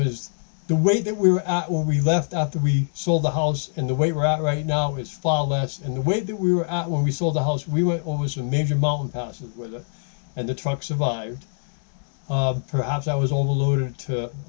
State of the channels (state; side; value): silent; right; digital silence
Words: the weight that we were at when we left after we sold the house and the weight we're at right now is far less. And the weight that we were at when we sold the house, we went over some major mountain passes with it, and the truck survived. Perhaps I was overloaded to